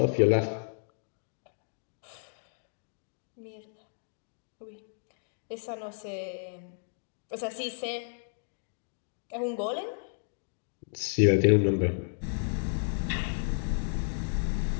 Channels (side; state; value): right; silent; digital silence